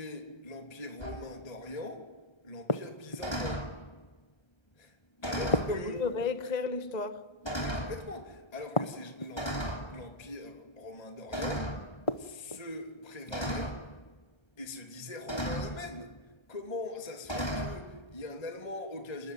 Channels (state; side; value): late; right; 1.3 ms